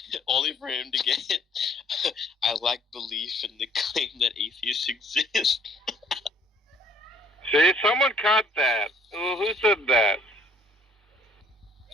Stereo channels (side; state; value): both; normal; correlation 0.59